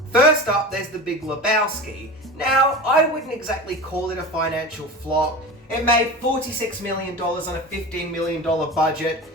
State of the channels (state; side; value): normal; both; correlation 0.30